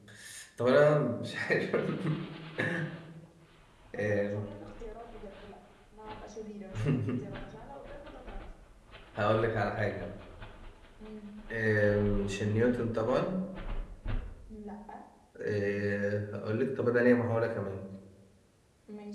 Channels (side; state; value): both; identical; correlation 1.00